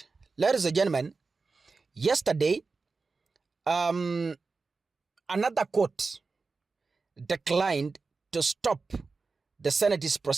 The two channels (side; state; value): left; quieter; 4.2 dB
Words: Ladies and gentlemen, yesterday, another court declined to stop the Senate's